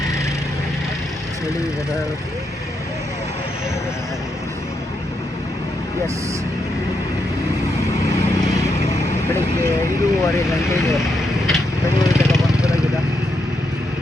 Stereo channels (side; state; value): both; normal; correlation 0.81